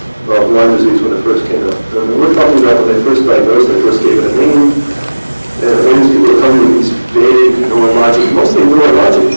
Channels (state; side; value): inverted; both; correlation -1.00